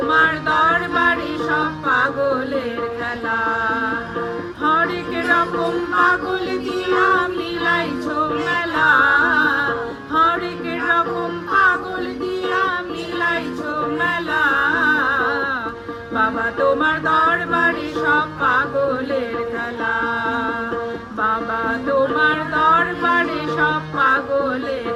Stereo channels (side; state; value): both; identical; correlation 1.00